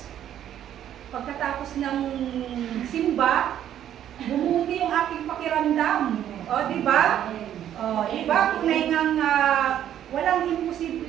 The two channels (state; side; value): quieter; left; 10.8 dB